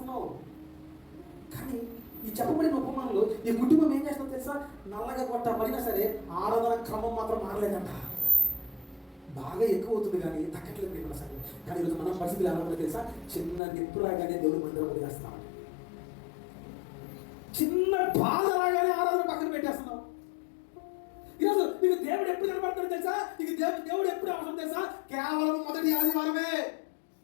కానీ ఈ చెప్పబడిన ఉపమానంలో ఈ కుటుంబం ఏం చేస్తుందో తెలుసా? నల్లగా కొట్టబడినా సరే ఆరాధన క్రమం మాత్రం మారలేదంట. బాగా ఎక్కువ అవుతుంది కానీ తగ్గట్లేదు మన సరే. కానీ ఈరోజు మన పరిస్థితులు ఎలా ఉందో తెలుసా? చిన్న నిప్పు రాగానే దేవుడు మందిరం వదిలేస్తామని, చిన్న బాధ రాగానే ఆరాధన పక్కన పెట్టేస్తున్నాం. ఈరోజు నీకు దేవుడు ఎప్పుడు కనబడతాడు తెలుసా? నీకు దేవుడు ఎప్పుడు అవసరం తెలుసా? కేవలం మొదటి ఆదివారమే.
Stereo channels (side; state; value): right; drops out; at 13.6 s